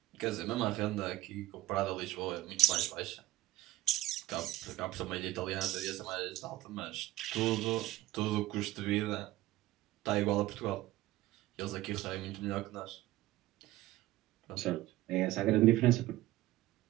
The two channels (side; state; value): left; quieter; 16.2 dB